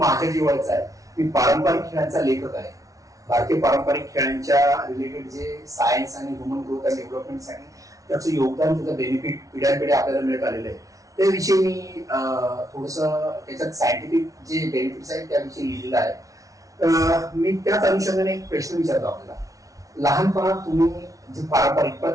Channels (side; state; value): left; late; 0.17 ms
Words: जिव्हाळ्याचा आहे. मी पारंपरिक खेळांचा लेखक आहे. भारतीय पारंपरिक खेळांच्या रिलेटेड जे सायन्स आणि ह्युमन ग्रोथ अँड डेव्हलपमेंटसाठी त्याचं योगदान, त्याचं बेनिफिट पिढ्यानपिढ्या आपल्याला मिळत आलेलं आहे. त्याविषयी मी थोडंसं त्याच्यात सायंटिफिक जे बेनिफिट्स आहेत त्याविषयी लिहिलेलं आहे. मी त्याच अनुषंगाने एक प्रश्न विचारतो आपल्याला. लहानपणात तुम्ही जे पारंपरिक